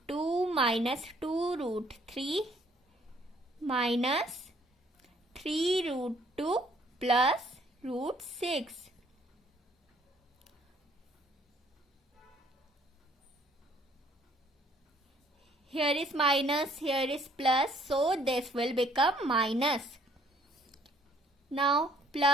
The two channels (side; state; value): both; normal; correlation 0.62